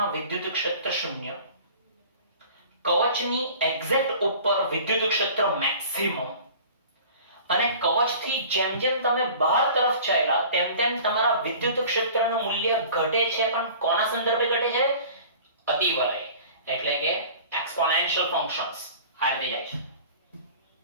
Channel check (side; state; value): both; inverted; correlation -0.44